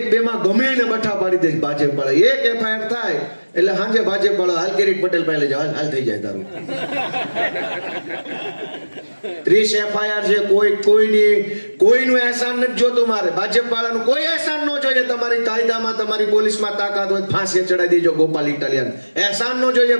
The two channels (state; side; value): inverted; both; correlation -1.00